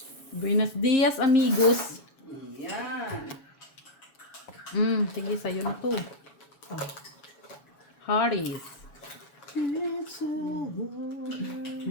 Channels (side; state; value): right; late; 7.1 ms